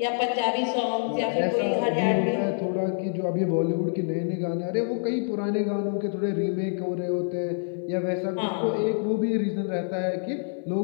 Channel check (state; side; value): silent; right; 58 dB below the other